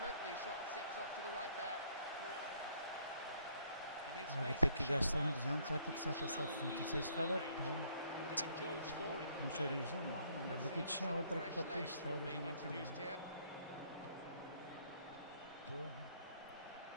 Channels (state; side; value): inverted; both; correlation -0.65